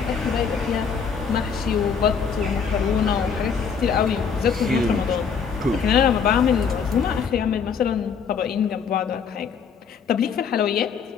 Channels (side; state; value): right; quieter; 6.4 dB